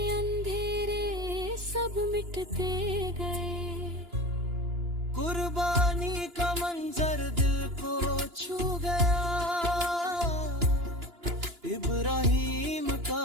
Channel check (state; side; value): late; left; 2.9 ms